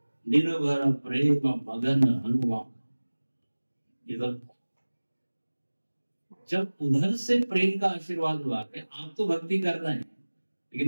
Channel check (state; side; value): inverted; both; correlation -1.00